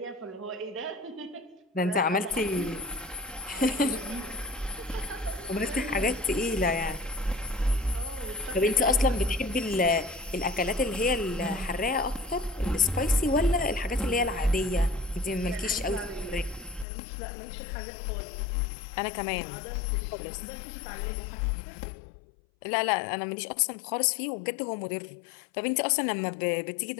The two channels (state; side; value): drops out; right; at 16.9 s